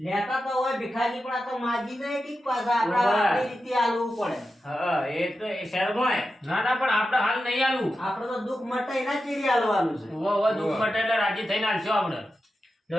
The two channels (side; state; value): both; normal; correlation 0.90